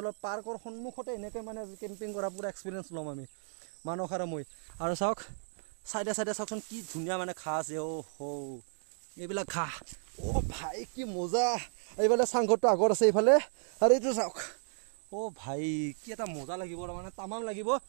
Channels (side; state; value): left; silent; 55 dB below the other